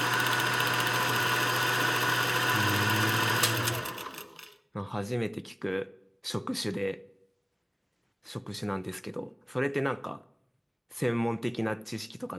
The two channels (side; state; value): both; identical; correlation 1.00